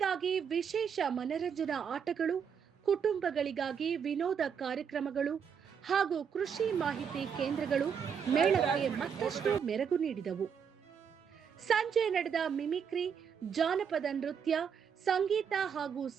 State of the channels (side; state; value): left; quieter; 7.2 dB